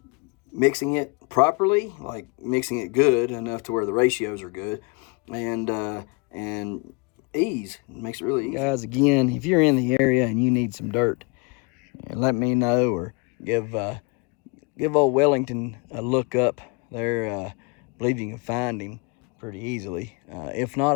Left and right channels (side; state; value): right; quieter; 30.9 dB